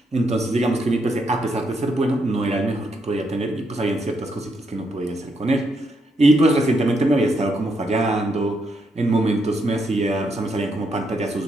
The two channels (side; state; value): both; normal; correlation 0.78